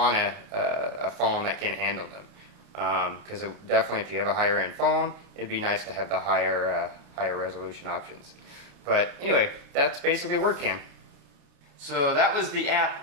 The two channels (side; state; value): left; late; 28 ms